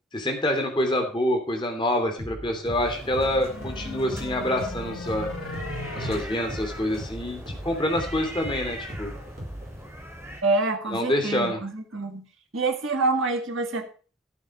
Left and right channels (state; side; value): normal; both; correlation 0.43